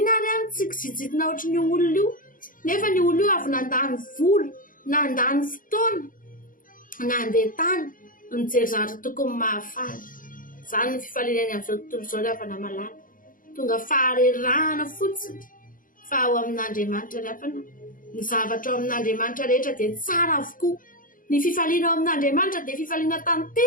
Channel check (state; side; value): late; right; 0.40 ms